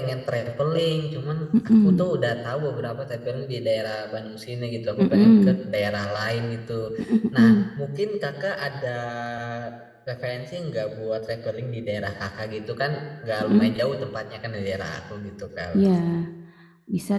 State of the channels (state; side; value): identical; both; correlation 1.00